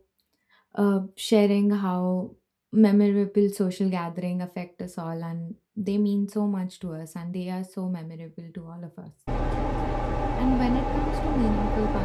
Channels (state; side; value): identical; both; correlation 1.00